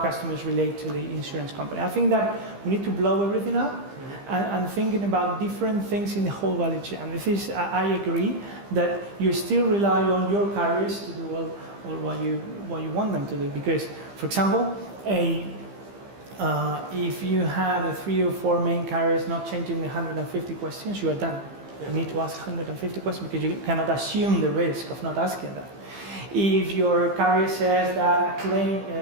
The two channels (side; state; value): left; late; 15 ms